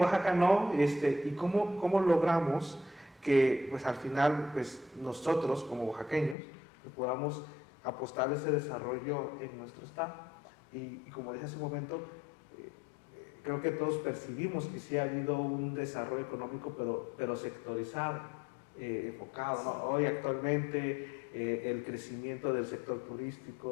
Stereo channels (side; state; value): right; drops out; at 6.4 s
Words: no? ¿Y cómo logramos que, pues al final, pues nosotros como oaxaqueños, pues, podamos apostar ese desarrollo en nuestro estado? Y como dije hace un momento, creo que todos percibimos que sí ha habido un desarrollo económico, pero sectorizado. enfocado, ¿no? Hoy actualmente el crecimiento del sector